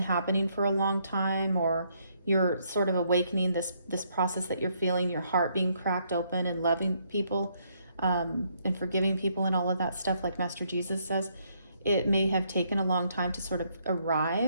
for a long time, or you're sort of awakening this process that you're feeling, your heart being cracked open and loving people and forgiving people and all of that stuff, like Master Jesus says. It may have taken a long time to sort of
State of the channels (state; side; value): inverted; both; correlation -0.72